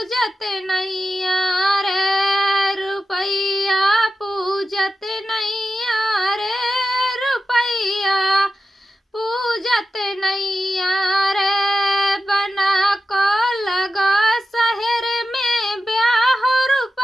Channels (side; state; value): both; normal; correlation 0.91